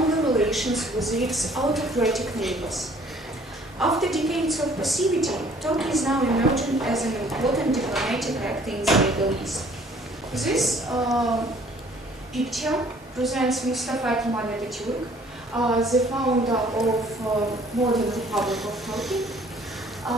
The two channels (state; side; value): normal; both; correlation 0.57